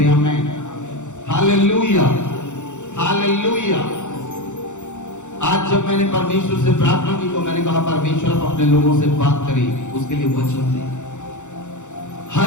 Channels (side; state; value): right; late; 0.85 ms